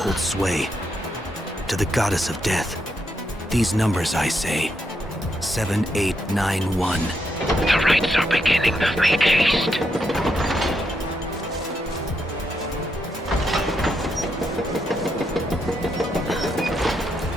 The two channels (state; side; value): normal; both; correlation 0.80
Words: sway. To the goddess of death, these numbers I say. 7891. The rites are beginning. Make haste.